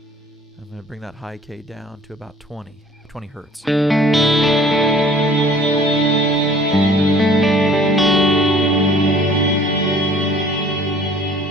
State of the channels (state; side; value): normal; both; correlation 0.53